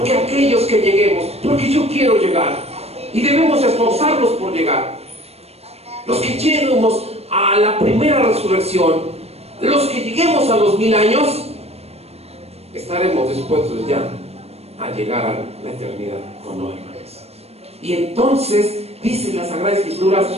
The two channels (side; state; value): left; late; 0.30 ms